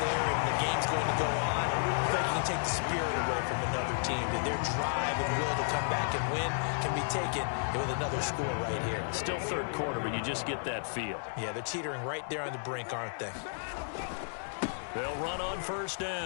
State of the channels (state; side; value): silent; right; digital silence